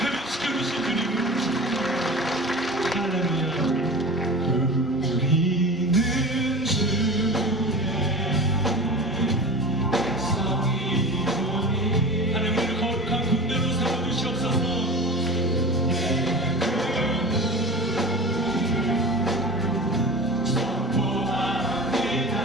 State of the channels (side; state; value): both; normal; correlation 0.33